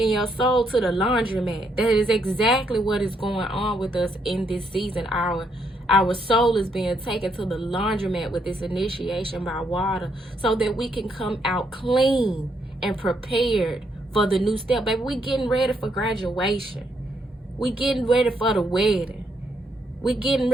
your soul to the laundromat. That is exactly what is going on with us in this season. Our soul is being taken to the laundromat with this initiation by water, so that we can come out clean and prepared for the new step. Baby, we getting ready for graduation. We getting ready for the wedding. We getting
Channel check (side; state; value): both; normal; correlation 0.75